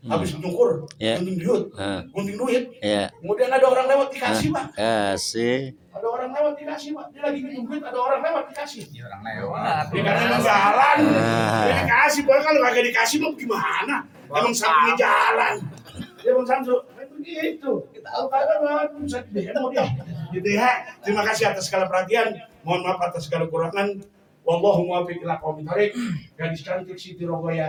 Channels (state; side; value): identical; both; correlation 1.00